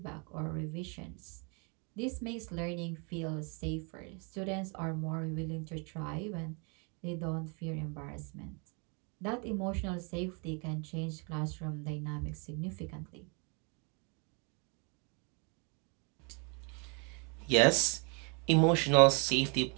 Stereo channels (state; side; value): quieter; left; 34.2 dB